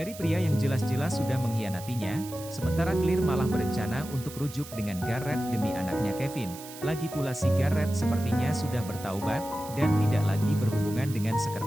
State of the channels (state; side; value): noise; right; hiss, 15 dB below the sound